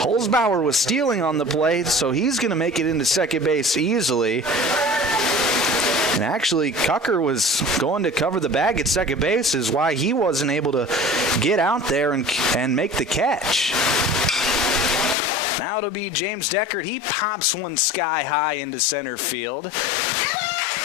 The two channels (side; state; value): right; drops out; at 15.2 s